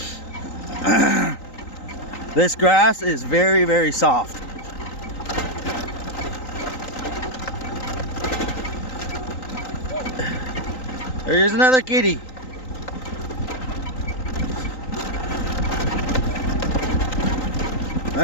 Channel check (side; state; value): right; late; 3.9 ms